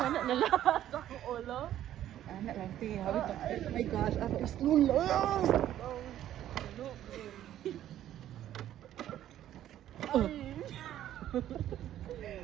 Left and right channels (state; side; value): quieter; left; 12.0 dB